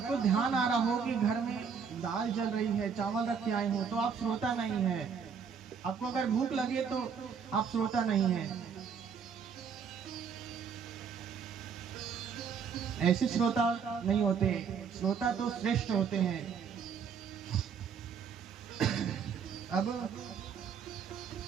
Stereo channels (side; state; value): left; quieter; 6.6 dB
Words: ध्यान आ रहा हो कि घर में दाल जल रही है, चावल रख के आए हो, तो आप श्रोता नहीं है। आपको अगर भूख लगे तो आप श्रोता नहीं है। ऐसे श्रोता नहीं होते, श्रोता तो श्रेष्ठ होते हैं। अब